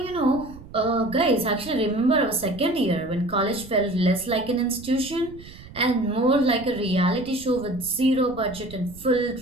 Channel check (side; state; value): right; noise; rumble, 18 dB below the sound